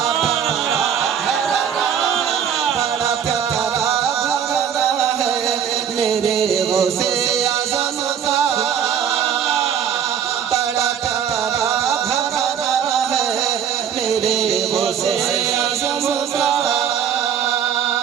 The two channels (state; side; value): quieter; left; 8.4 dB